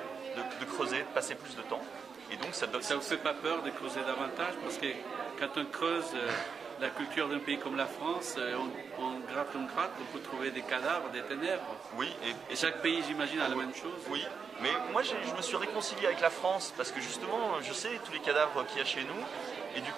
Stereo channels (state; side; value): quieter; left; 5.8 dB